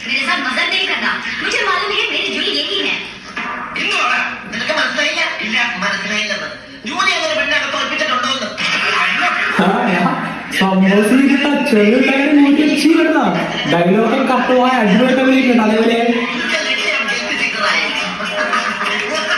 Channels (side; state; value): both; identical; correlation 1.00